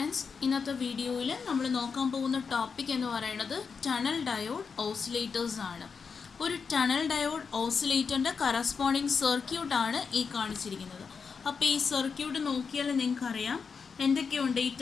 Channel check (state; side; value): quieter; right; 5.6 dB